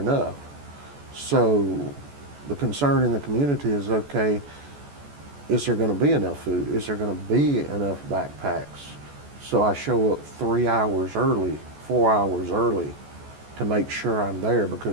So the concern in the community is, okay, is there going to be enough food? Is there going to be enough backpacks? So I show up 3 hours early, 4 hours early, to make sure I'm there,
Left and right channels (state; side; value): late; left; 14 ms